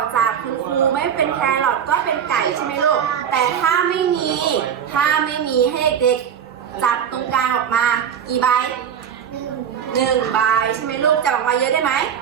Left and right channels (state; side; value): quieter; left; 8.4 dB